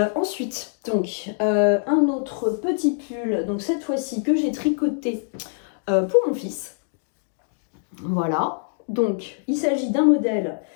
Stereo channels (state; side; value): silent; right; digital silence